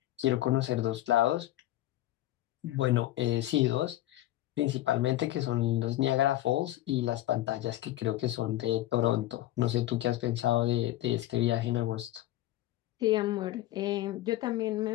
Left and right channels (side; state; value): right; quieter; 15.0 dB